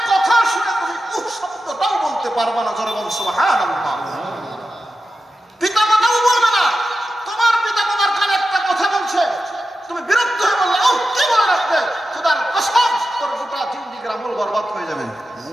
কথা শুনে তুমি উফ শব্দটাও বলতে পারবে না। জোরে বল সুবহানাল্লাহ। পিতামাতাও বলবে না, তোমার পিতামাতার কানে একটা কথা বলছে, তুমি বিরক্ত হয়ে বললে ও কি বলে রাখবে, খোদার কসম তোর গোটা জিন্দেগির আমল বরবাদ হয়ে যাবে।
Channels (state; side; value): normal; both; correlation 0.91